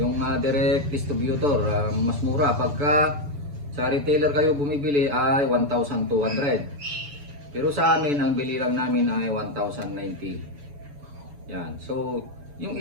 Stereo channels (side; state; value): left; late; 6.9 ms